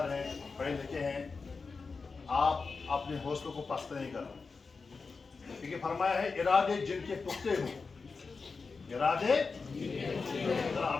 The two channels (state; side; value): quieter; right; 4.6 dB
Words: हैं, पढ़े लिखे हैं। आप अपने हौसलों को पस्त नहीं करना, क्योंकि फरमाया है इरादे जिनके पुख्ते हो, इरादे